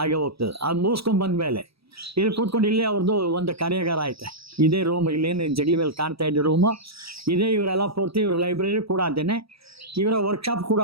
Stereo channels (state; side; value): late; left; 0.77 ms